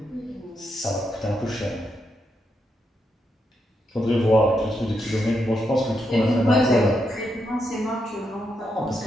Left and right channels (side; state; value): both; normal; correlation 0.81